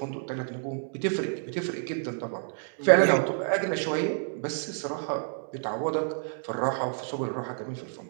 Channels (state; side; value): silent; left; digital silence